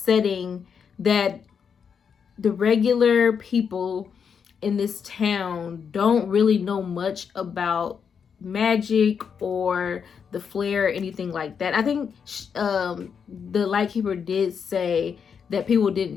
that the regular people in this town don't really know much about magic or the flare or anything like that. I think the Lightkeeper did say that people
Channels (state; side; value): quieter; right; 6.8 dB